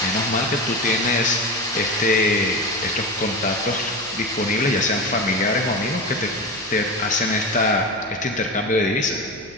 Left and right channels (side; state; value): left; noise; hum, 25 dB below the sound